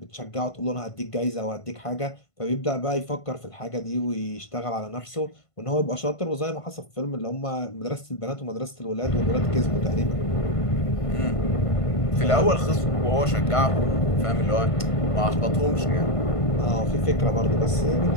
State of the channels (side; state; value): right; late; 1.5 ms